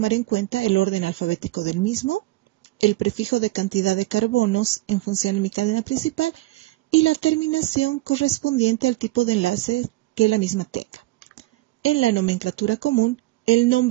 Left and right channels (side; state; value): left; quieter; 18.7 dB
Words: en cuenta el orden alfabético del mismo, el prefijo de cantidad de carbonos en función de mi cadena principal y la terminación correspondiente al tipo de enlace que la misma tenga. En la nomenclatura común, el